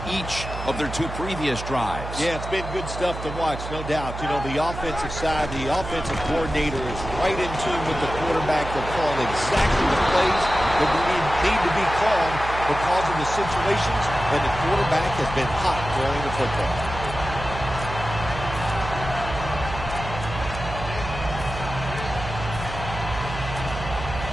each of their 2 previous drives. Yeah, it's been good stuff to watch, no doubt. You know, the offensive side, the offensive coordinator is right in tune with the quarterback. They're calling exactly the plays that need to be called because of the situations, and the quarterback has been hot throwing the football.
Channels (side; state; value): right; noise; hum, 8 dB below the sound